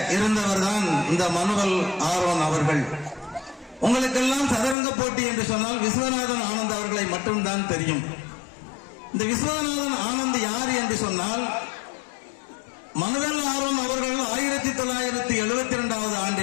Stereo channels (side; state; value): right; drops out; at 4.8 s